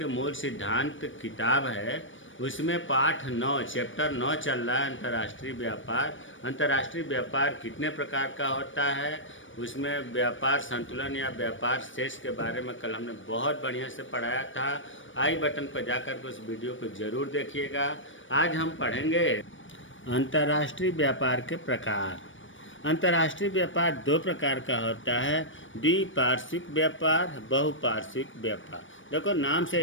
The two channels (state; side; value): late; right; 0.56 ms